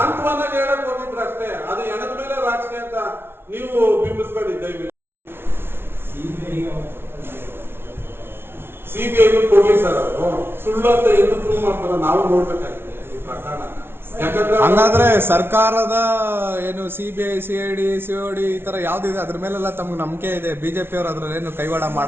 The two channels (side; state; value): left; late; 0.11 ms